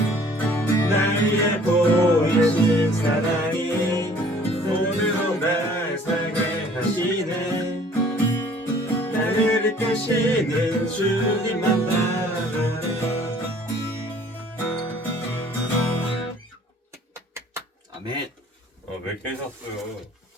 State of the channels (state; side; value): normal; both; correlation 0.54